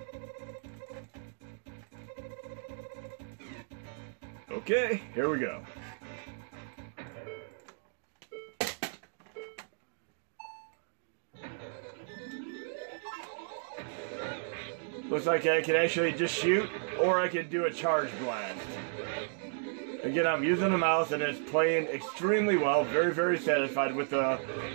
Okay, here we go. Looks like I can actually just shoot, or I can do a charge blast. Again, I'm using the mouse and it's playing extremely well. Very satisfied with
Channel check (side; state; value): left; silent; digital silence